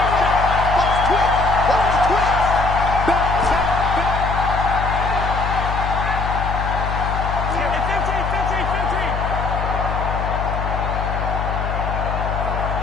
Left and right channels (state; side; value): noise; left; hum, 3 dB below the sound